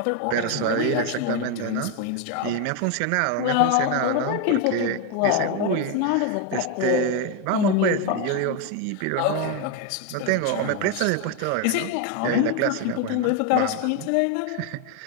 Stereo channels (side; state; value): both; different; correlation 0.02